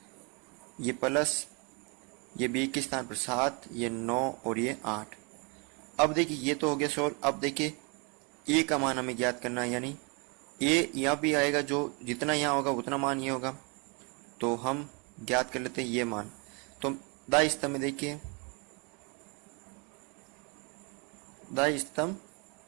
ये प्लस ये b के स्थान पर 7, ये 9 और ये 8। अब देखिए ये तो हो गया सॉल्व। अब देखिए a का मान हमें ज्ञात करना है, यानी a यहाँ भी आएगा, जो जितना यहाँ होगा उतना मान ये होगा, तो हम ज्ञात कर लेते हैं ये मान। तो दाई स्तंभ में देखिए, दाई स्तंभ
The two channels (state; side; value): quieter; left; 32.2 dB